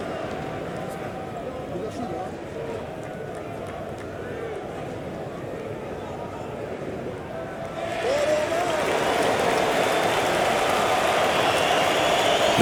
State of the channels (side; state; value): both; identical; correlation 1.00